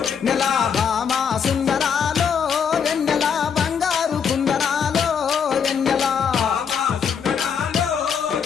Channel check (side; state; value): right; quieter; 7.0 dB